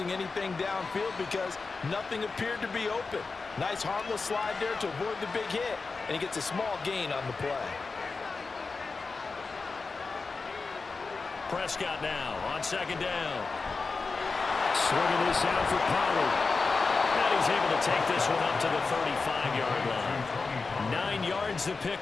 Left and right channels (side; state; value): right; quieter; 4.3 dB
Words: anything downfield because nothing appeared to be open. Nice harmless slide there to avoid the big hit, and he gets a small gain on the play. Prescott now on second down. Swinging this out for Pollard. And he's able to take this one up to the 35-yard line. 9 yards to